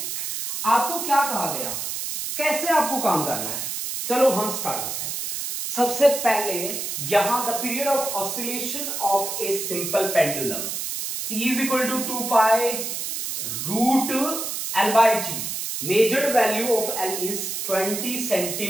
आपको क्या कहा गया, कैसे आपको काम करना है। चलो हम स्टार्ट करते हैं। सबसे पहले यहां the period of oscillation of a simple pendulum t is equal to 2 pi root L by G. Measured value of L is 20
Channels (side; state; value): right; noise; hiss, 4 dB below the sound